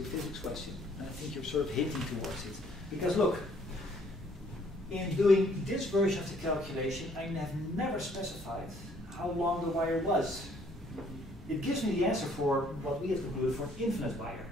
a physics question. And I think you're sort of hinting towards it. Because look, in doing this version of the calculation, I have never specified how long the wire was. It gives me the answer for what we have concluded for an infinite wire.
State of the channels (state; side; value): normal; both; correlation 0.63